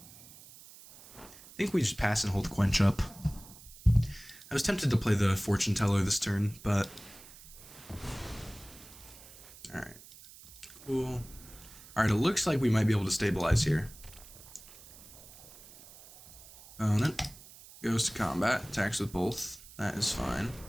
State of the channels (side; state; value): right; noise; hiss, 19 dB below the sound